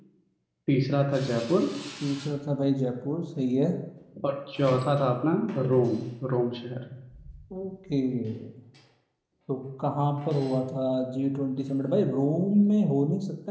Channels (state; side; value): identical; both; correlation 1.00